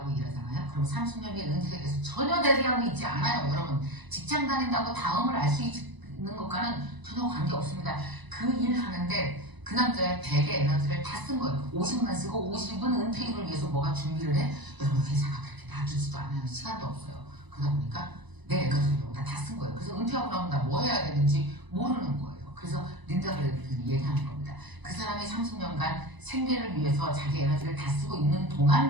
일하잖아요. 그럼 30년 뒤에 은퇴에 대해서 전혀 대비하고 있지 않아요. 여러분 직장 다닌다고 다음을 알 수 있는 것과는 전혀 관계없습니다. 그 일 하는데 그 남자의 100의 에너지를 다 쓴 거예요. 50만 쓰고 50은 은퇴기를 위해서 뭐가 준비를 해? 여러분 회사가 그렇게 놔두지도 않아요. 시간도 없어요. 그러다 보니까 내 에너지를 여기다 다 쓴 거예요. 그래서 은퇴하고 나면 나 뭐 해야 되는지 모르는 거예요. 그래서 린다가 얘기하는 겁니다. 그 사람이 30년간 생계를 위해서 자기 에너지를 다 쓰고 있는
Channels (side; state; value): left; late; 1.0 ms